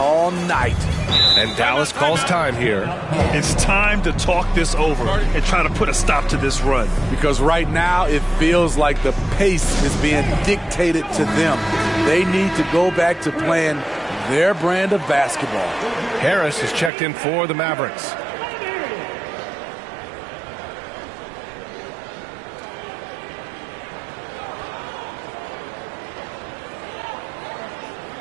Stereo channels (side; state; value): left; drops out; at 16.9 s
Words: night. And Dallas calls time here. It's time to talk this over and try to put a stop to this run. Because right now it feels like the pace is being dictated to them. They need to go back to playing their brand of basketball. Harris is checked in for the Mavericks.